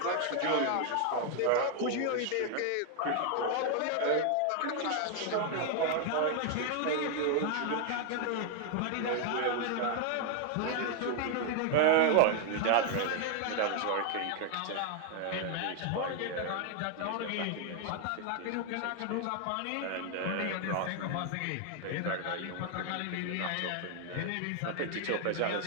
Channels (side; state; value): both; different; correlation 0.00